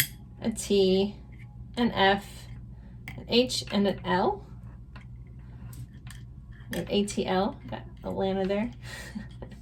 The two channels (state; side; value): identical; both; correlation 1.00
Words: a T, an F, an H, and an L. An ATL, got Atlanta there.